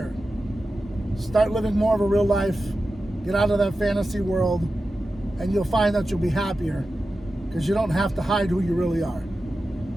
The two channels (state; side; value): normal; both; correlation 0.93